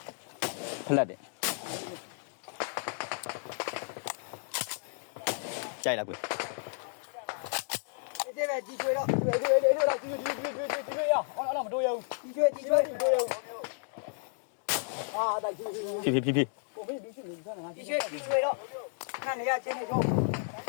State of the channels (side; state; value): right; silent; digital silence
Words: ဖလက်တယ်ကြိုက်လားကွဒီပဲဒီကျွေးတော့ဒီတော့ဒီရအောင်မတို့ရဘူးဒီကျွေးအာဒါဒီဖြည်းကိုမင်းလူရှိနေကြတာဒီကျွေးတော့ခဏနေရချင်းနေတော့